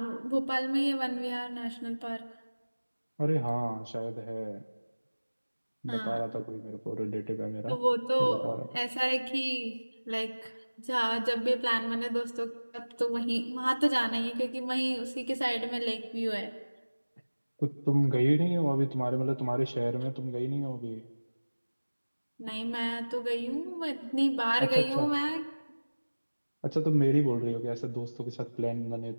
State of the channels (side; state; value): both; inverted; correlation -1.00